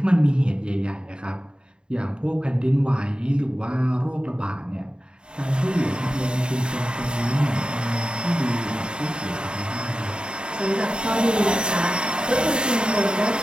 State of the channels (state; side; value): late; left; 0.050 ms